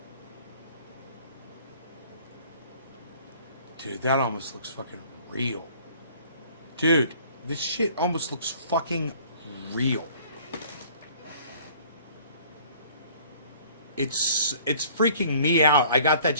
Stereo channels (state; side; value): inverted; both; correlation -0.53